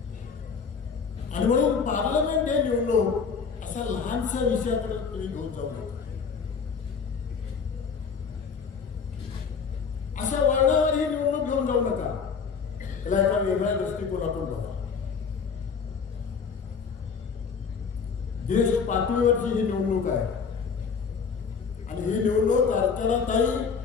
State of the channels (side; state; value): right; quieter; 5.8 dB